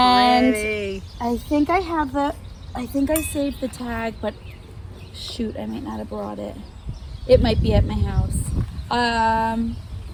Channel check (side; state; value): both; identical; correlation 1.00